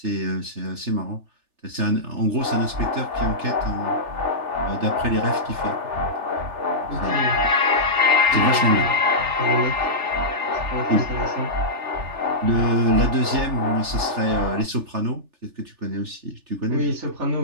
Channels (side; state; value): left; late; 3.4 ms